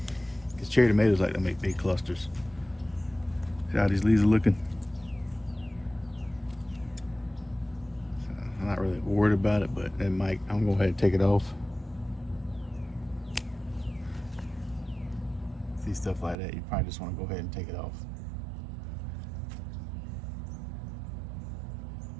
Because cherry tomatoes like to make big clusters. See how these leaves are looking? So I'm not really worried about it, but it might. I'm going to go ahead and take it off. See stuff like that, you probably just want to go ahead and take it off.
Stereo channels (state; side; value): drops out; left; at 16.4 s